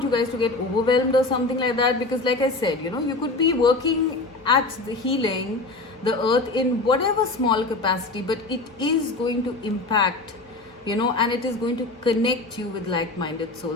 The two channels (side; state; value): right; quieter; 3.2 dB